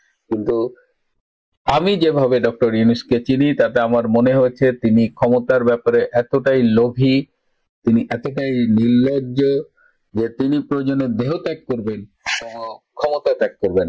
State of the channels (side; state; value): both; identical; correlation 1.00